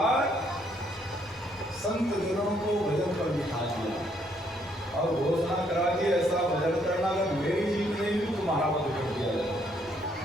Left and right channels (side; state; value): both; normal; correlation 0.70